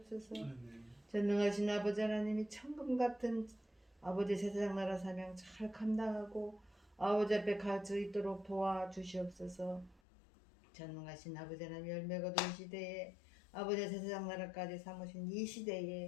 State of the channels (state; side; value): drops out; right; at 10.0 s